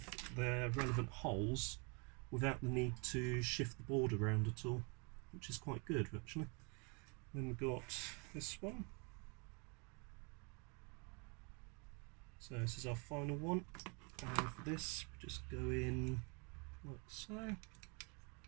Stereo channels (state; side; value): quieter; left; 33.6 dB